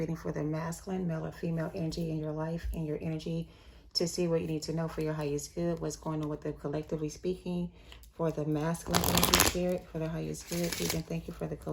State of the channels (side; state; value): both; identical; correlation 1.00